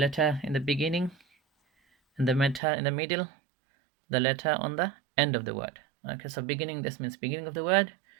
in the beginning and the letter in the middle, the letter on the end of the word. Okay, so beginning, this means beginning of the word,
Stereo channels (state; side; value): drops out; left; at 2.6 s